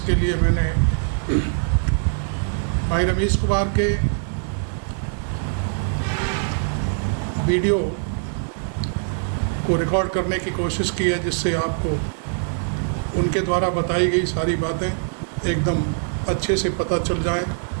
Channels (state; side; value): silent; left; digital silence